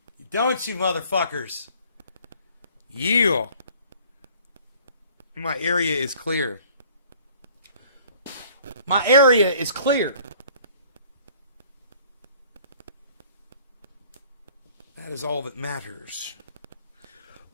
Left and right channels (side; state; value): both; inverted; correlation -0.54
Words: Don't you, motherfuckers? Yeah. My area is clear. My area is clear. That is all that matters.